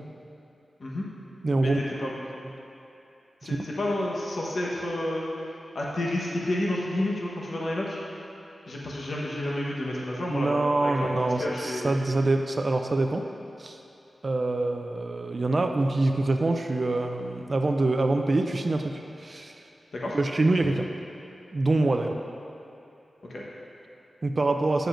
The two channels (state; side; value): normal; both; correlation 0.95